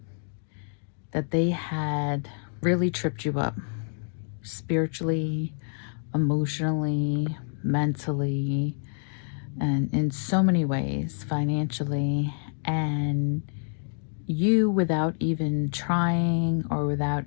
that they had really tripped you up spiritually, emotionally, mentally, and in so many ways, financially. And you, without even trying or without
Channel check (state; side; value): silent; right; 60 dB below the other